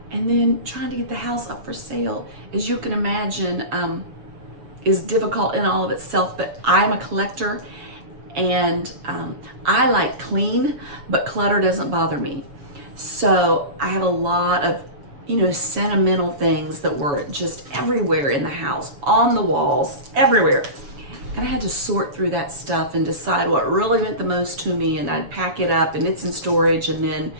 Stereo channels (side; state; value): left; late; 7.2 ms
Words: and then trying to get the house up for sale, as you can imagine, is difficult in all of itself. But I'm a collector, and I like clean, but clutter doesn't bother me. So I have a lot of, sentimental things that were just everywhere in the house, on the walls, everywhere. And I had to sort through that stuff and decide what really meant the most to me, and I'd pack it up and it's in storage, and then